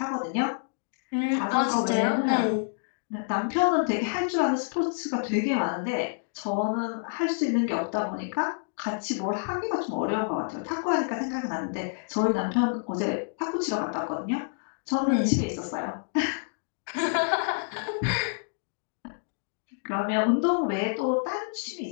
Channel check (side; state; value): right; silent; digital silence